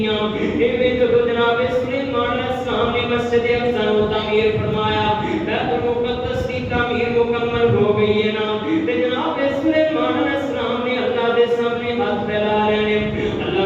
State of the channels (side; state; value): both; identical; correlation 1.00